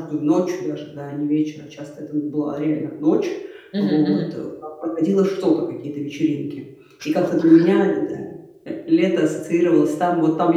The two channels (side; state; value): both; identical; correlation 1.00